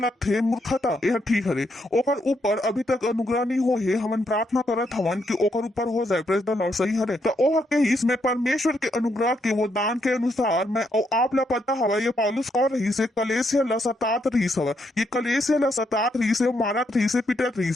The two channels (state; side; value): normal; both; correlation 0.77